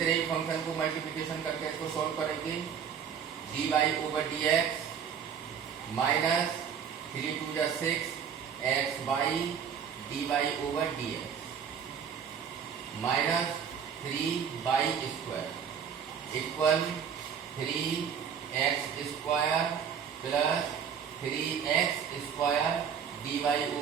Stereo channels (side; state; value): left; quieter; 7.6 dB